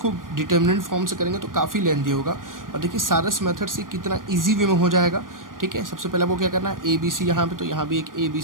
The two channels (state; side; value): late; left; 0.90 ms